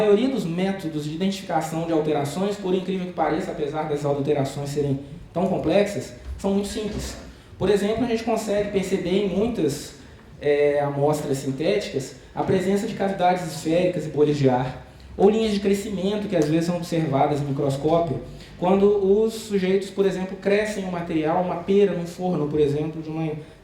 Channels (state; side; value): identical; both; correlation 1.00